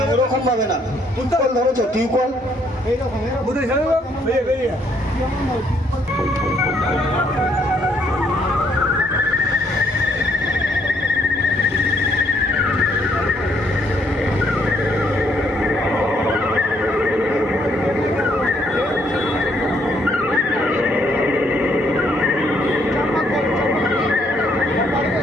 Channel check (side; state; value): both; normal; correlation 0.70